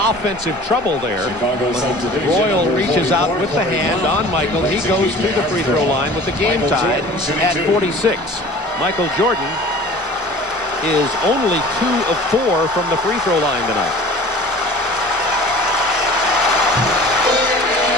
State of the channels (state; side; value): normal; both; correlation 0.44